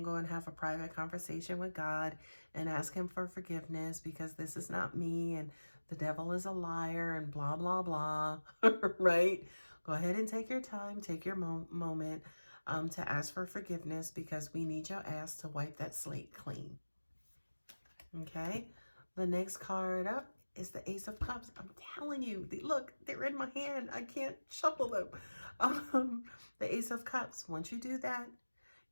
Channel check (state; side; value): inverted; both; correlation -1.00